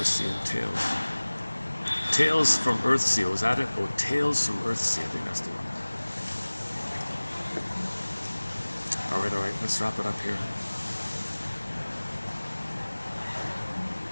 and Tales. Tales from Earthsea, was that it? Oh, Tales from Earthsea, I think that's the one. All right, let's wrap it up here.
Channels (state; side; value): inverted; both; correlation -1.00